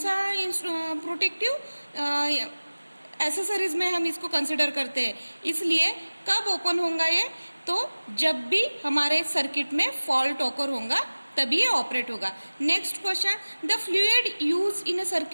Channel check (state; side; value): inverted; both; correlation -1.00